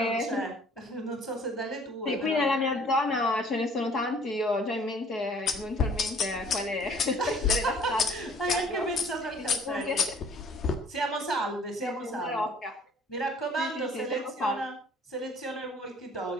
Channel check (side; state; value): both; normal; correlation 0.55